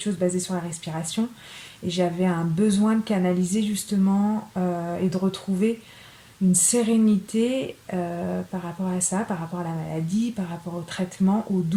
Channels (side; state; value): both; identical; correlation 1.00